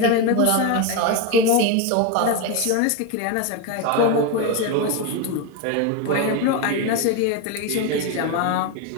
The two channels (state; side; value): different; both; correlation 0.03